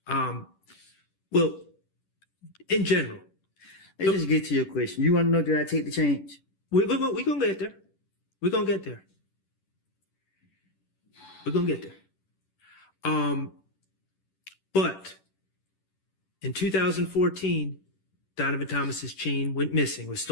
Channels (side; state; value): right; late; 10 ms